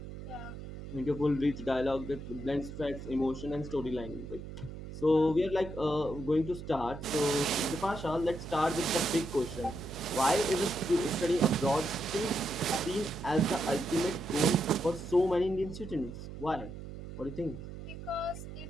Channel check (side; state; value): right; noise; hum, 11 dB below the sound